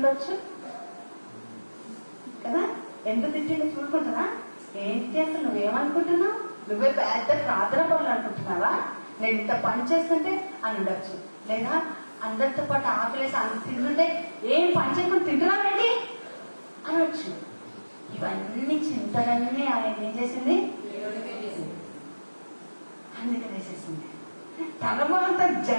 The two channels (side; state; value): both; inverted; correlation -1.00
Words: కదా. ఎంత తిట్టిండో చూడుకుంటున్నా. ఏంటి అసలు నువ్వేమనుకుంటున్నావు? నువ్వే పెద్ద ప్రార్థన పనులు అనుకుంటున్నావా? నేను ఇంత పని చేస్తుంటే అని ఉండొచ్చు. లేదా అందరితో పాటు ఆకలేసి అంత తింటుంటే ఏం పని చేయకుండా తింటున్నావేంటి అనొచ్చు. ఇవన్నీ చింతలన్నీ ఆయన ఏం చేసింది? అందుకే వేసేసింది. తర్వాత